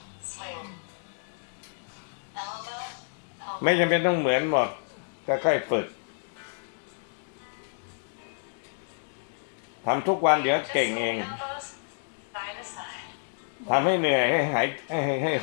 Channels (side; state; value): right; silent; digital silence